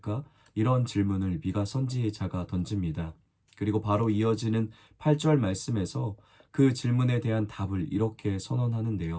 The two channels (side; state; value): both; identical; correlation 1.00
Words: 이런 질문을 미가 선지자가 던집니다. 그리고 바로 이어지는 8절 말씀에서 그 질문에 대한 답을 이렇게